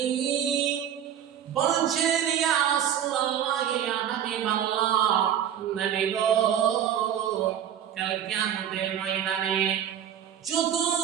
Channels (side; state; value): left; quieter; 9.6 dB